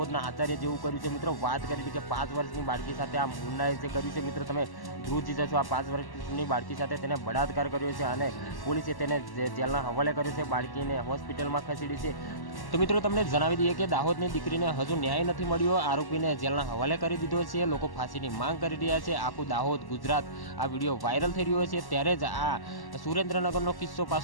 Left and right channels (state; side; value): late; right; 1.1 ms